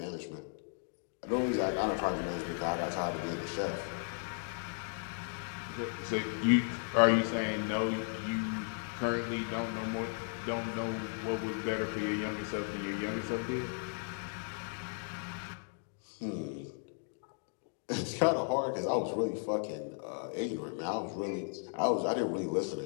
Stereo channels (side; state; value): right; silent; 54 dB below the other